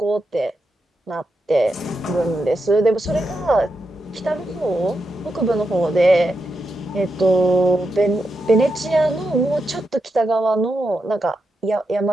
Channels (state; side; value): normal; both; correlation 0.86